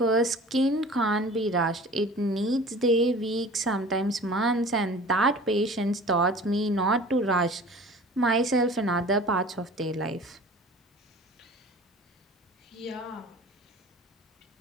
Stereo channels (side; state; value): both; normal; correlation 0.43